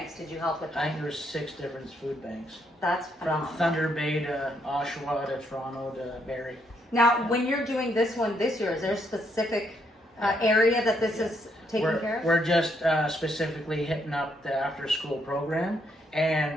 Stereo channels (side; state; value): both; normal; correlation 0.74